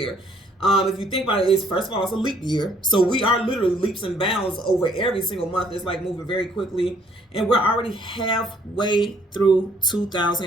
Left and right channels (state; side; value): normal; both; correlation 0.63